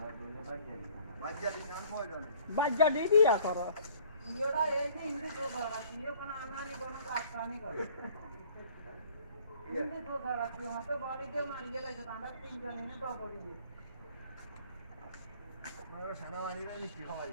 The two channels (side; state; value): both; inverted; correlation -0.54